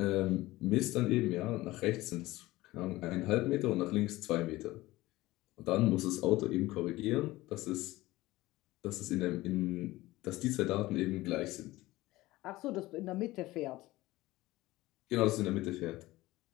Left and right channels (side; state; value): right; quieter; 18.3 dB